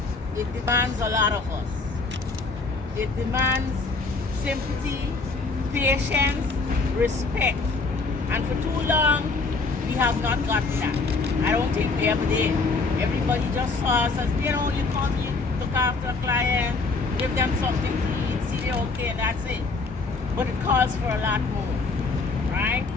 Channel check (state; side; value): quieter; right; 3.9 dB